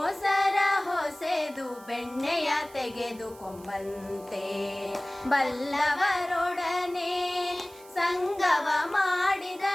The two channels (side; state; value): right; noise; hiss, 23 dB below the sound